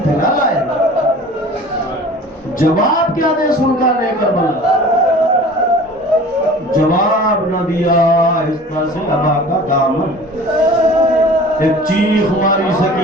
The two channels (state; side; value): normal; both; correlation 0.43